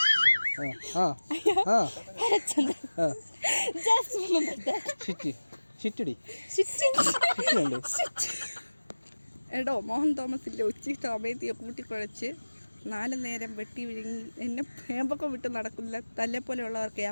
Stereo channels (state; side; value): inverted; both; correlation -1.00